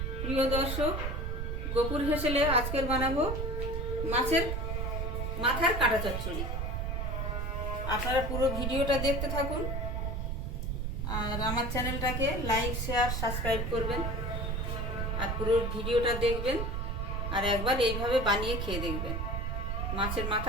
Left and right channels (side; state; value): right; noise; rumble, 1 dB below the sound